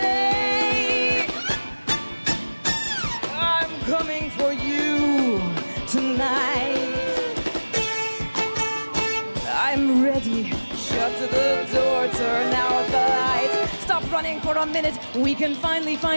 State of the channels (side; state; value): both; inverted; correlation -1.00